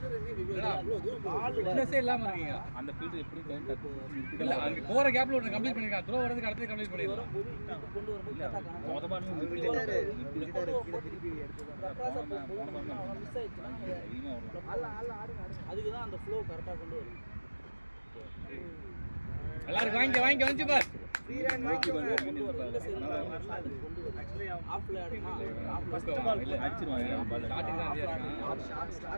என்னடா இவ்ளோ தூரம் ஃபிட்னஸே இல்லாம இருக்கீங்க அந்த ஃபீல்ட் எப்படி டைம் இல்ல அங்க போற கேப்ல ஒன்னு கம்ப்ளீட் பண்ணிருக்கான் த்ரோ வரதுக்கு அடுத்து கம்ப்ளீட் பண்ணிடலாம் வரும்போது இங்க கொண்டு வரும்போது கரெக்டா காணோம். மொத பால் திருப்பி எடுத்து மிஸ் ஆயிடுச்சுன்னா அதுக்கு தான் அந்த ஃப்ளோ கரெக்டா கொண்டு வரும். எல்லாரும் வாங்கி வந்து பார் ஃப்ரீ ரன் வாங்கி கொண்டு வரும். இந்த சைடு கொண்டு வரும். ஆஃப்ல ஆடுனா ஃபர்ஸ்ட் பால் இல்ல அடிச்சிருவாங்க பால் ஸ்டார்டிங் தான் இருக்கான்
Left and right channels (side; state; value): both; inverted; correlation -1.00